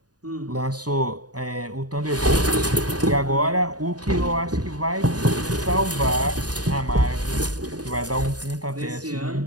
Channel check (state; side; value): late; left; 0.68 ms